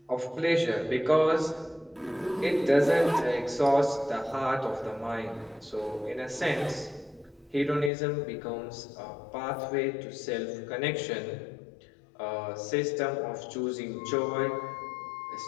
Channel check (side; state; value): right; drops out; at 7.9 s